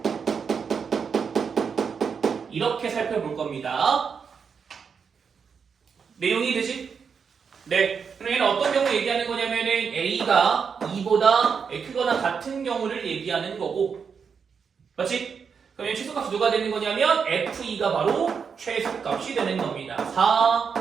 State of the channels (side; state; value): left; quieter; 6.2 dB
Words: 이렇게 살펴볼 겁니다. 내용이 되지? 네. 그럼 얘는 어떤 경우 얘기하는 거냐면은 A가 2보다 크거나 같은 경우를 얘기하는 거고 맞지? 그럼 최소값이 누가 되는 거냐면 F2가 바로 최소값이 되는 겁니다. 4